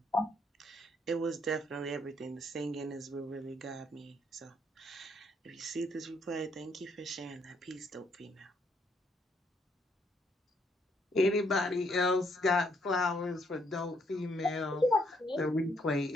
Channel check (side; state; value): both; normal; correlation 0.71